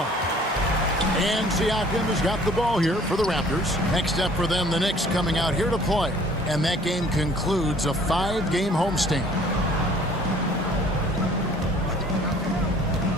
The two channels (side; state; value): both; normal; correlation 0.54